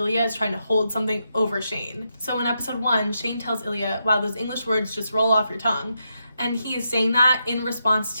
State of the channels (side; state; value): both; inverted; correlation -0.83